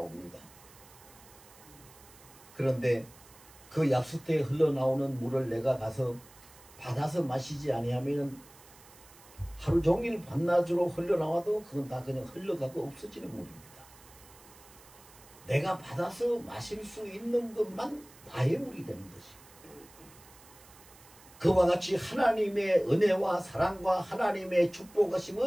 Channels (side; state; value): right; noise; hiss, 23 dB below the sound